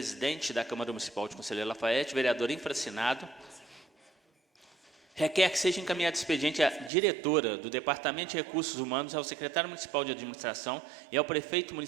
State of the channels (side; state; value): left; drops out; at 6.9 s